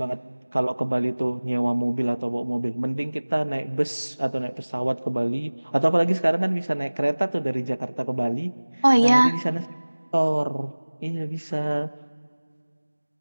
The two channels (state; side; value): inverted; both; correlation -1.00